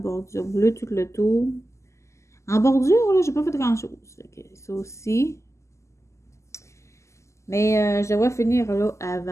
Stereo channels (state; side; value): late; right; 0.14 ms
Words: bleue tout le tour. En bordure, là, j'ai pas fait grand chose. Fait que ça aussi. Mais je devrais finir là